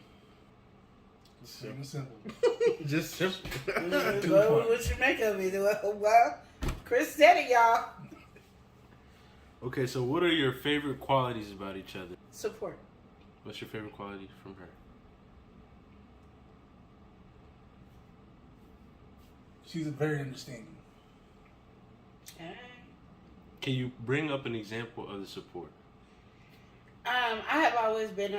It's plain and simple. Just simple. What you make of it? Well, Chris said it, y'all. Okay, so what are your favorite qualities about each other? Support. What's your favorite quality from her? She's very understanding. Can you bring up an example of the support? I have always been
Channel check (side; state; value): both; identical; correlation 1.00